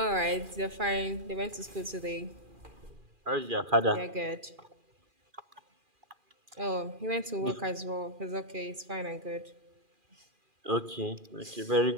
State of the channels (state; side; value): late; left; 2.4 ms